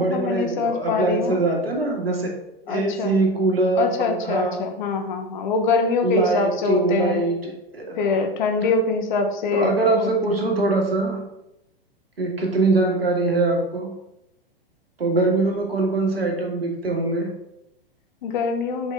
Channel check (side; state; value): both; normal; correlation 0.27